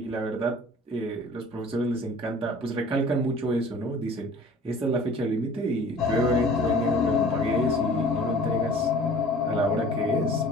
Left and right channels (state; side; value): normal; both; correlation 0.47